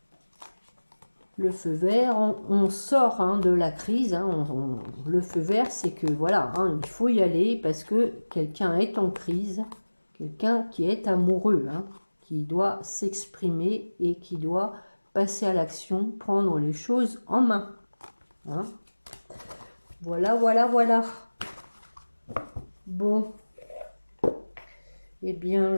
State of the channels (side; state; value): both; inverted; correlation -1.00